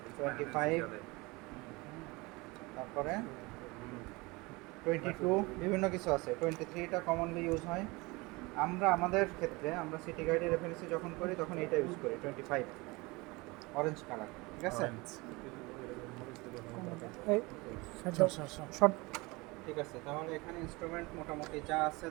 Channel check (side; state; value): left; quieter; 24.2 dB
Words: 25, তারপরে 22, বিভিন্ন কিছু আছে। 23টা কমনলি ইউজ হয়। আমরা আমাদের ক্ষেত্রে আমরা সিটি গাইডের রেফারেন্সে যখন করি তখন এটা ইউজ করি, 25 অরেঞ্জ কালার, ঠিক আছে। এই শর্ট ঠিক আছে, তাহলে এখানে ইনস্ট্রুমেন্ট মোটামুটি যা আছে